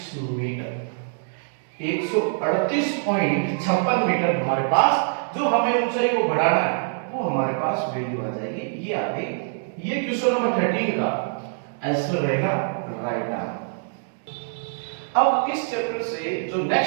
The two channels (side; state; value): left; silent; digital silence